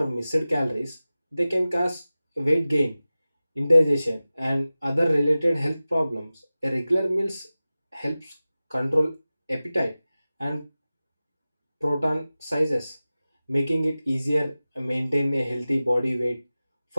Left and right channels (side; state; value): both; inverted; correlation -0.96